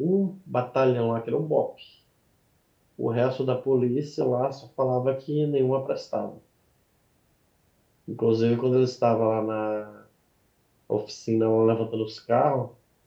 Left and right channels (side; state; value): both; identical; correlation 1.00